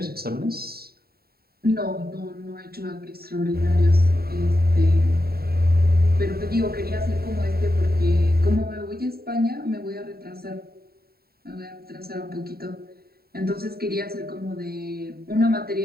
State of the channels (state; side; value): late; left; 0.45 ms